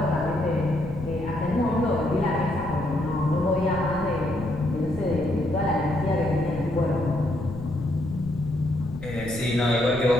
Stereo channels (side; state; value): left; noise; rumble, 12 dB below the sound